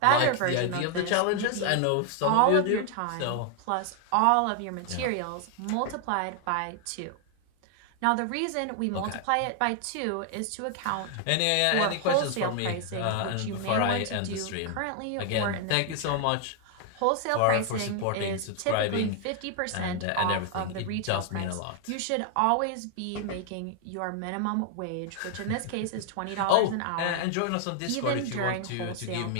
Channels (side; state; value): both; different; correlation 0.00